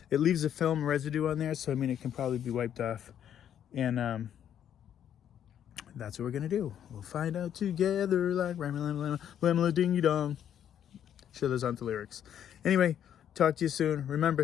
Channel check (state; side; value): quieter; right; 9.7 dB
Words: It leaves a film residue on there, so I mean it can probably be wiped off. And that's what we're gonna do. We'll find out together like Lamla Ding Dong. Sure, those aren't the lyrics. Anyway, talk to you soon.